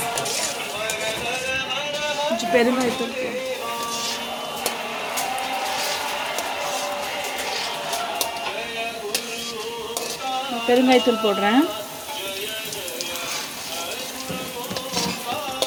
கொஞ்சம் பெருங்காயத்தூள். பெருங்காயத்தூள் போடுறேன்.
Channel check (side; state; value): both; identical; correlation 1.00